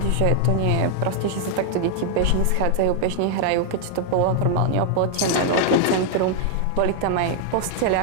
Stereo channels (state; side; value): different; both; correlation 0.00